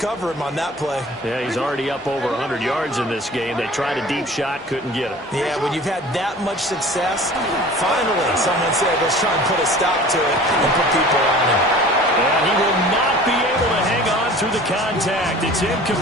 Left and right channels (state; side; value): normal; both; correlation 0.44